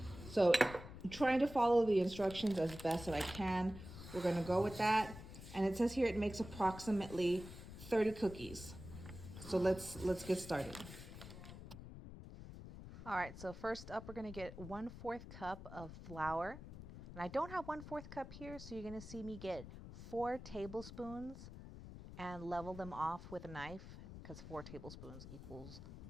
So I'm trying to follow the instructions as best that I can. We're gonna go with that. And it says here it makes approximately 30 cookies. So let's get started. All right, so first up, we're gonna get 1/4 cup of flour. And I don't have 1/4 cup here, so you're gonna see me get 4 tablespoons and level them off with a knife because 4 tablespoons equals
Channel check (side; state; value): left; noise; rumble, 12 dB below the sound